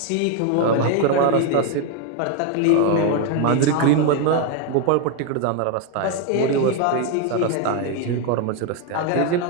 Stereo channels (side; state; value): both; different; correlation 0.01